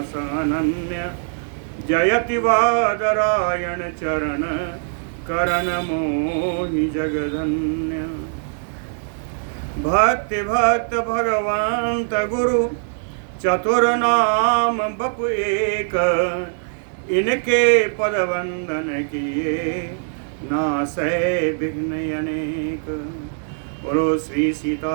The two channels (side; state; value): left; silent; digital silence